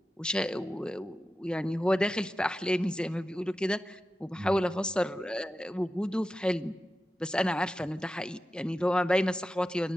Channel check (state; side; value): normal; both; correlation 0.92